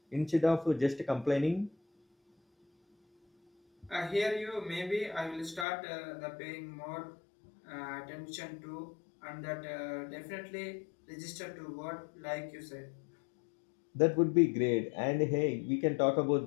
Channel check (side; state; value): right; drops out; at 5.7 s